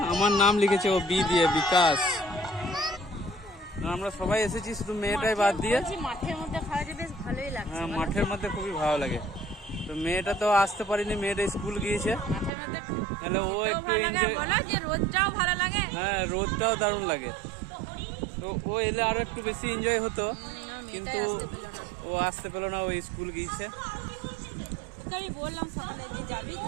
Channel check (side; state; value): left; drops out; at 12.5 s